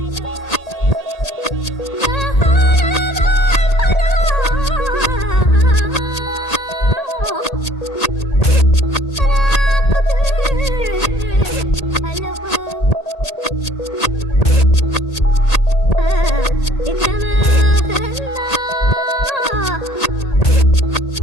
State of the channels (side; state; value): right; late; 1.8 ms